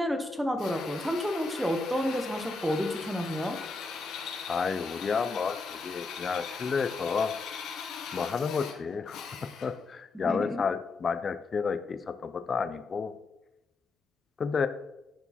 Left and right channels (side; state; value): right; quieter; 3.6 dB